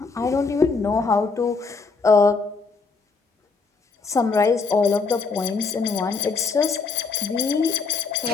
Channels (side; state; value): right; quieter; 4.5 dB